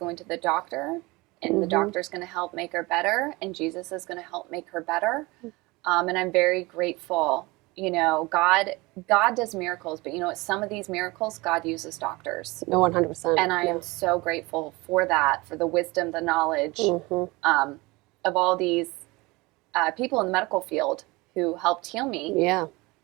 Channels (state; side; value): quieter; left; 23.3 dB